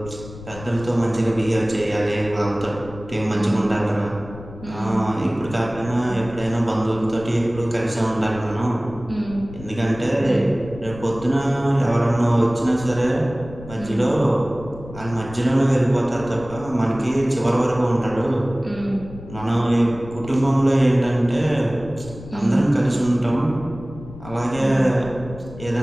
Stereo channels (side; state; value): left; noise; rumble, 15 dB below the sound